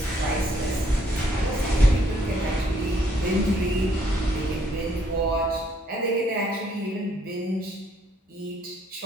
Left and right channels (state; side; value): normal; both; correlation 0.68